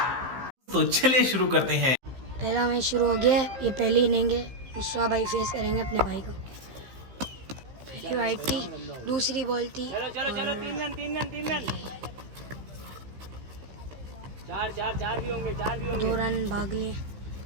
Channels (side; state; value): left; late; 15 ms